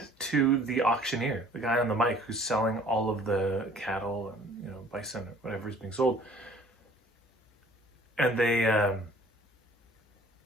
to the auctioneer, the guy on the mic who's selling all of the cattle and bison or whatever is being sold. And they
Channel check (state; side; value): normal; both; correlation 0.53